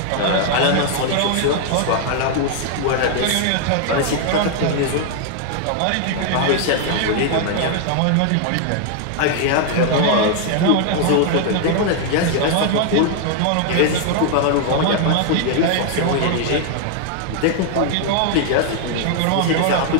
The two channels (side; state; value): both; different; correlation 0.00